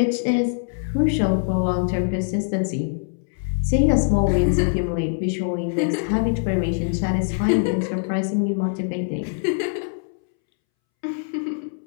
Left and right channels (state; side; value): silent; right; 64 dB below the other